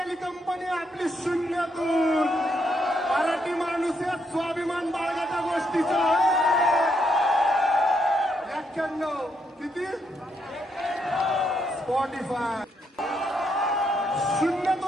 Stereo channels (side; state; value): both; normal; correlation 0.76